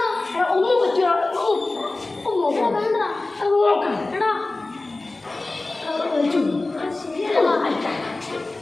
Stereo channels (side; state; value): right; quieter; 3.1 dB